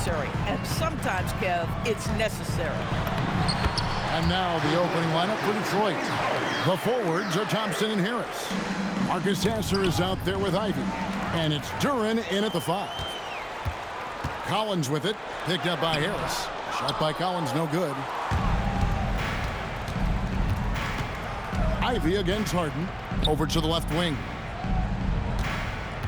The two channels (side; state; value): both; identical; correlation 1.00